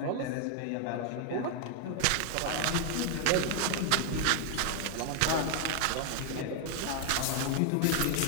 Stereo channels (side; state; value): both; different; correlation 0.00